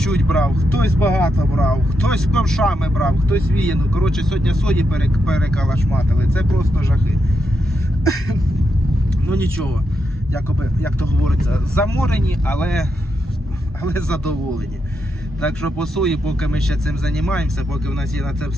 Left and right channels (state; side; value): normal; both; correlation 0.83